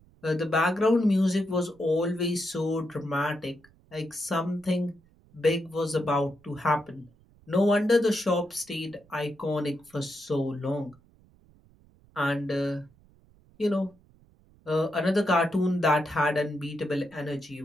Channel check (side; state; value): right; noise; rumble, 29 dB below the sound